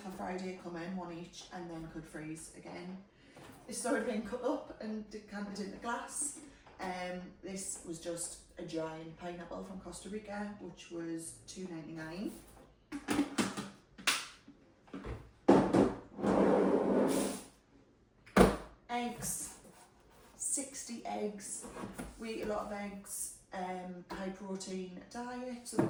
Friday coming, 1 each, and then could freeze again. This started being cut up and decanted into glass. This was just a giant pineapple from Costa Rica, which was $2.99. Eggs, 60 eggs. We eat a lot of eggs, high protein diet, so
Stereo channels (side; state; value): both; identical; correlation 1.00